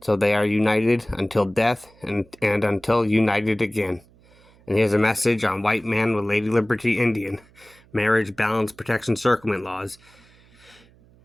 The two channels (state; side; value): noise; right; hum, 28 dB below the sound